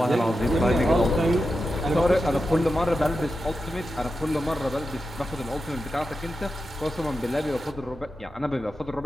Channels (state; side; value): normal; both; correlation 0.90